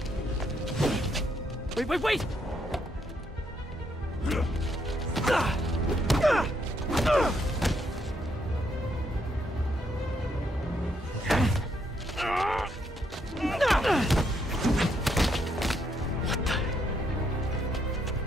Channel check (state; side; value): normal; both; correlation 0.75